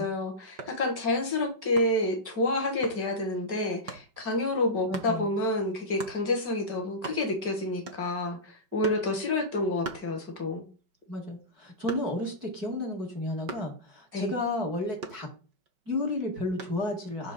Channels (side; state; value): left; late; 5.3 ms